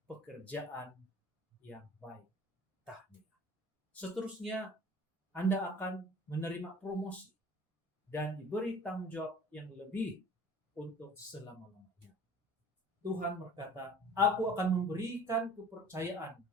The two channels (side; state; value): both; normal; correlation 0.46